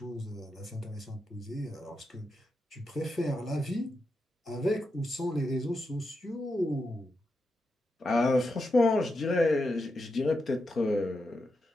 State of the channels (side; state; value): both; normal; correlation 0.86